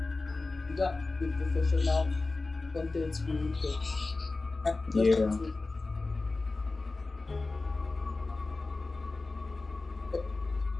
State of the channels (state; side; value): quieter; right; 3.5 dB